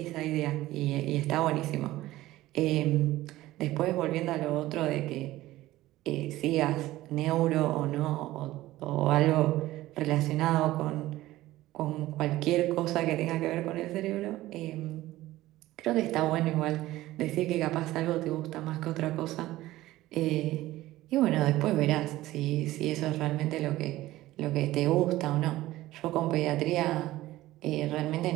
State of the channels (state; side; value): quieter; left; 16.4 dB